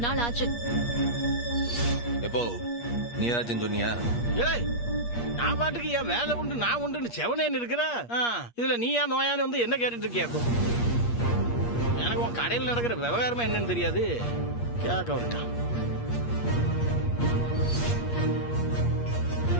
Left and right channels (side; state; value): right; late; 8.5 ms